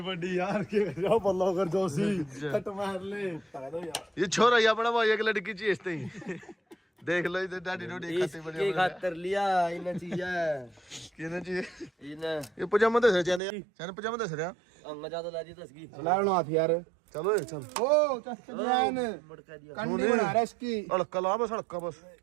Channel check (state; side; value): drops out; left; at 13.4 s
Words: बड़ी यार के जाओ बल्ला कर जोशी कट मार ले दो यार ये छोरा ये अपना भाई एक लड़की चाहिए इसते ही। देख लो इधर डैडी डोडी खाते बड़े ये खातर लिया इन चीज किने चाहिए इन ये पजामा दे चने चने पजामा दे रहा। अंग ज्यादा लाजी तसगी चलाओ हाथ यार। चलो चल ओ चस्ते जान मटका दिया कंडी बना रहा है इसकी। अड़का ला बस, अड़का बस